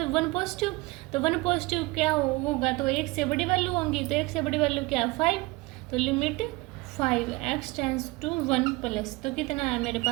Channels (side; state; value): left; quieter; 23.1 dB